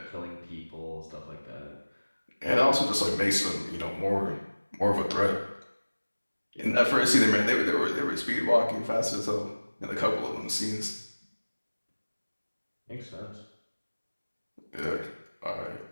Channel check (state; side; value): inverted; both; correlation -1.00